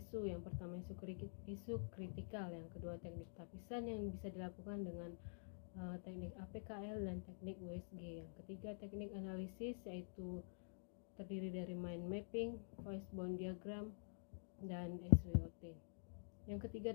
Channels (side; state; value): right; silent; digital silence